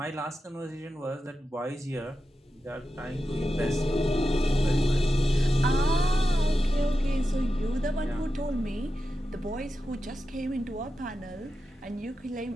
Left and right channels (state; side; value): normal; both; correlation 0.90